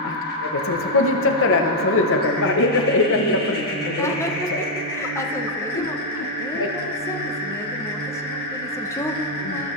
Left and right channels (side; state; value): both; normal; correlation -0.02